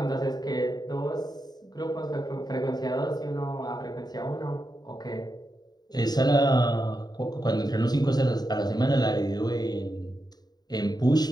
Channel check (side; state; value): right; late; 0.20 ms